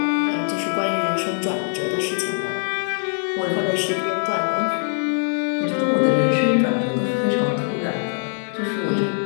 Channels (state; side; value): silent; right; 64 dB below the other